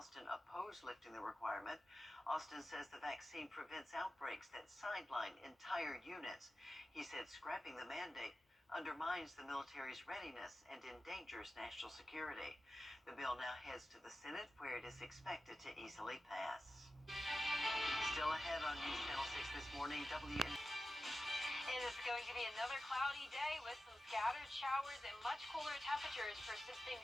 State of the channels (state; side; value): normal; both; correlation 0.93